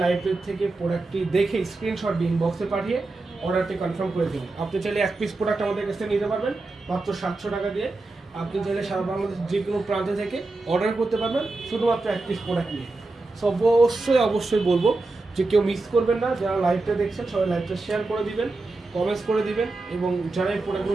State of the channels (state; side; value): quieter; left; 3.3 dB